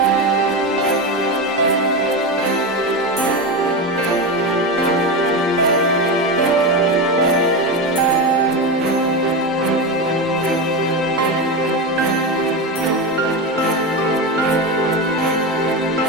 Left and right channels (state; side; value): normal; both; correlation 0.17